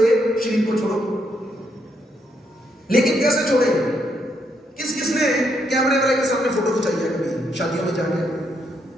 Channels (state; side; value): normal; both; correlation 0.76